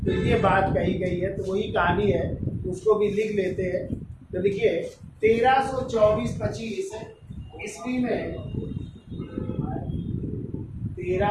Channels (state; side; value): identical; both; correlation 1.00